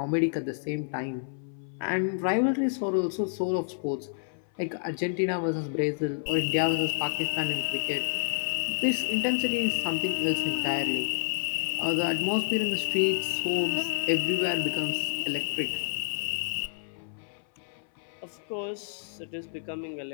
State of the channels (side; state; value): right; silent; 58 dB below the other